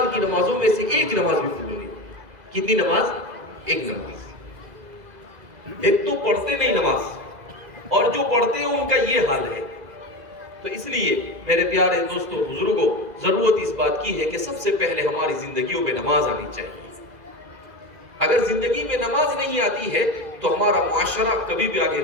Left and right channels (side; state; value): left; late; 2.0 ms